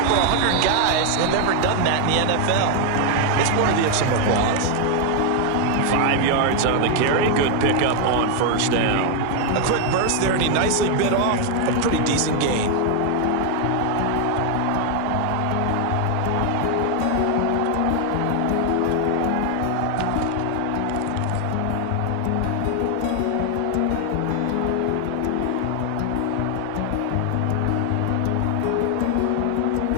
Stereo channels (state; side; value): different; both; correlation 0.00